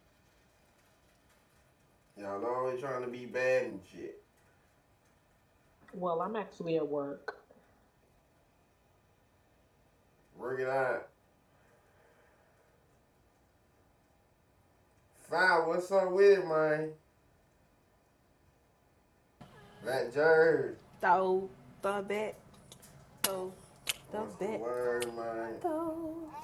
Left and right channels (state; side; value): identical; both; correlation 1.00